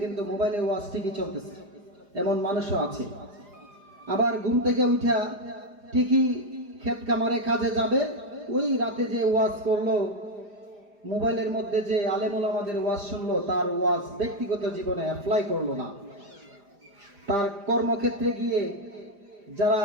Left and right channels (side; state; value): left; late; 4.9 ms